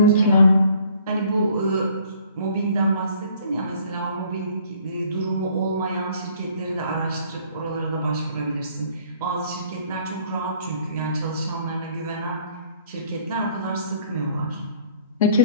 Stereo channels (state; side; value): inverted; both; correlation -0.58